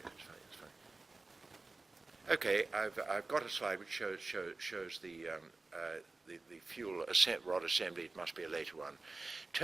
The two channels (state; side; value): quieter; left; 3.5 dB